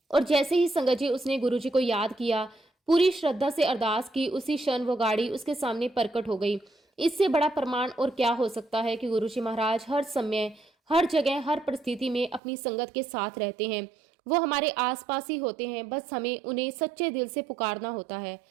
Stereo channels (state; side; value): drops out; left; at 12.4 s